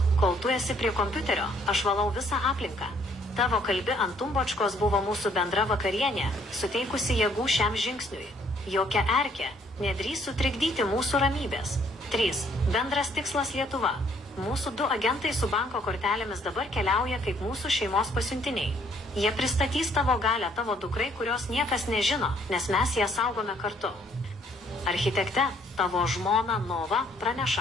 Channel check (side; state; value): both; normal; correlation 0.65